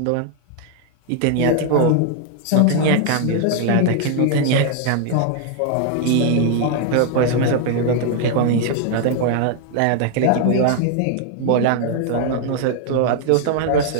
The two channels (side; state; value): both; different; correlation 0.00